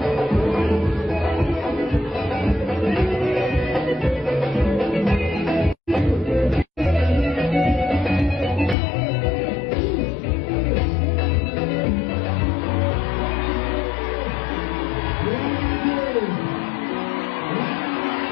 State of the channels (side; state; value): right; drops out; at 8.8 s